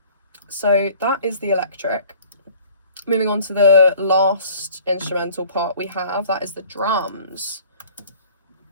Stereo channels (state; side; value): inverted; both; correlation -0.50